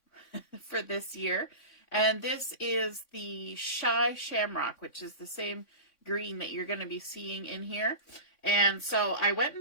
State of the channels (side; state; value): right; late; 3.6 ms